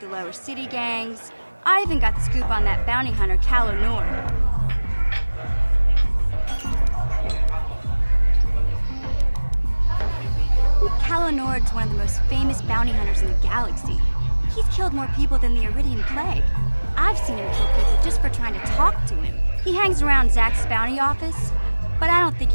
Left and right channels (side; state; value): both; inverted; correlation -1.00